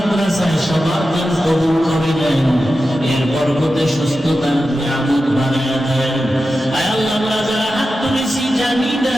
সবার দান কবুল করে নেন। এর বরকতে সুস্থতার নিয়ামত বানায় দেন। আয় আল্লাহ, আমরা যারা হাত তুলেছি জানি না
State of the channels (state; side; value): normal; both; correlation 0.92